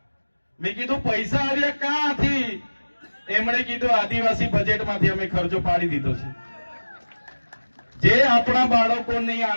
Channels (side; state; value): both; inverted; correlation -1.00